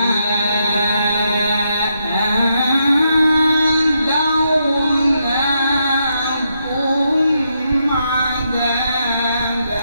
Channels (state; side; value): inverted; both; correlation -0.80